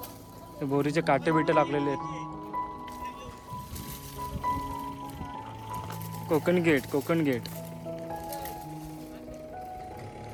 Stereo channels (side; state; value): both; identical; correlation 1.00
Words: बोरीचे काटे बिटे लागलेले आहेत. कोकण गेट, कोकण गेट.